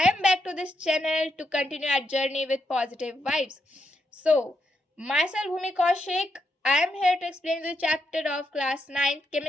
am back to this channel to continue our journey with positive vibes. So, myself Bhumi Kaushik, I am here to explain the chapter of class 9th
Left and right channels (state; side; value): normal; both; correlation 0.81